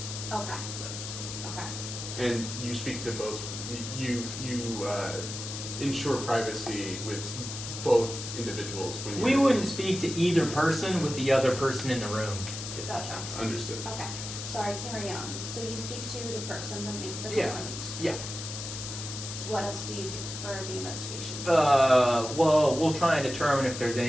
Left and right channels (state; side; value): noise; left; hiss, 8 dB below the sound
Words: Okay, So okay. And you speak to both, you ensure privacy with both individuals when we you're- wouldn't speak to either person with the other person in the room. if that Gotcha. makes sense. Understood. Okay, sorry, carry on. So you speak to the person that makes the Yeah. complaint. Yeah. What else do you do for the investigation? Well, we'll try and determine if there's